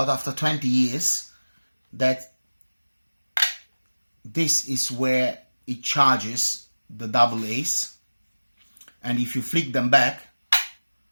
after 20 years that this is where it charges the AA's, and if you flick them back,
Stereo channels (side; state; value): both; inverted; correlation -1.00